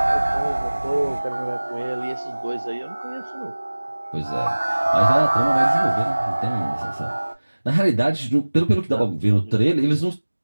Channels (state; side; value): inverted; both; correlation -1.00